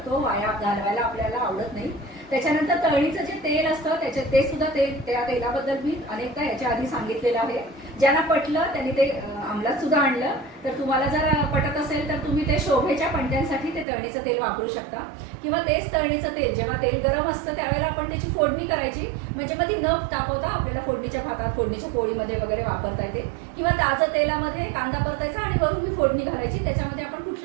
वाया घालवायला आपल्याला आवडत नाही। त्याच्यानंतर तळणीचं जे तेल असतं ते सुद्धा त्या तेलाबद्दल मी अनेकदा याच्या आधी सांगितलेलं आहे। ज्यांना पटलं त्यांनी ते अंमलात सुद्धा आणलं, तर तुम्हाला जर पटत असेल तर तुम्ही ते शोभेच्या पणत्यांसाठी ते तळणीचं तेल वापरू शकता, किंवा तेच तळणीचं तेल जेव्हा तेल गरम असतं त्यावेळेला आपण त्याची फोडणी करायची, म्हणजे मग ती न तापवता आपल्याला फोडणीच्या भातात, फोडणीच्या पोळीमध्ये वगैरे वापरता येते। किंवा ताजं तेलामध्ये कांदा परतायचा आणि वरून ही फोडणी घालायची, त्याच्यामध्ये आपण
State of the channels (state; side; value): drops out; left; at 13.9 s